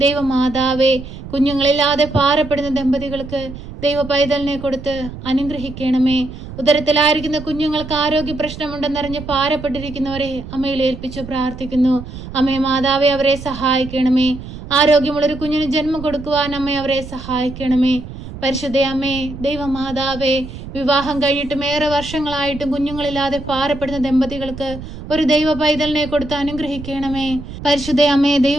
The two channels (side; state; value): right; noise; rumble, 12 dB below the sound